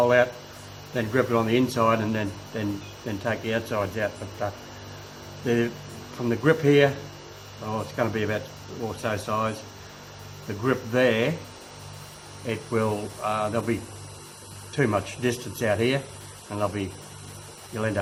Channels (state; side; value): identical; both; correlation 1.00